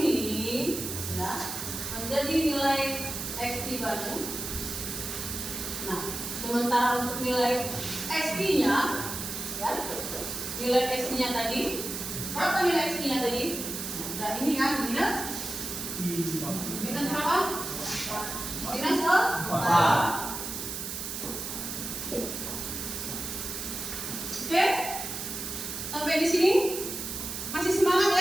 ya, menjadi nilai XT baru. Nah, sementara untuk nilai XT-nya ya, nilai XT-nya tadi, berapa nilai XT-nya tadi? Nah, ini kan minus berapa? Minus 4. Oke, sampai di sini masih semangat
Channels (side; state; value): right; noise; hiss, 5 dB below the sound